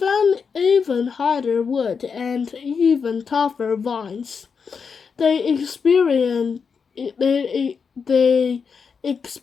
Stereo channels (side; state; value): right; quieter; 5.8 dB